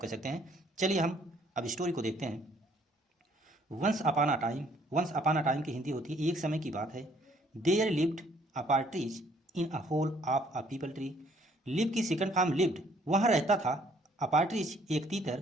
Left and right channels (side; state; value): both; normal; correlation 0.63